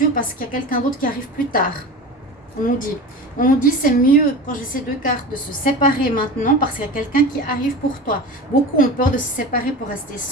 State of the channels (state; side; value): normal; both; correlation 0.31